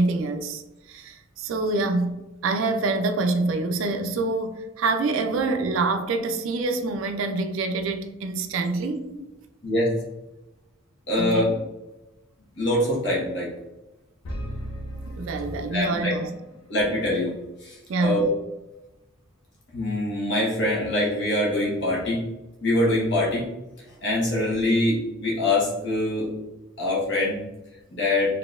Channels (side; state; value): both; normal; correlation 0.37